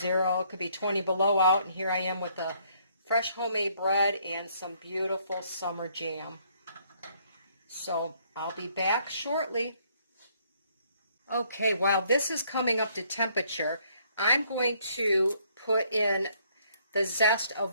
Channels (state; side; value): inverted; both; correlation -0.66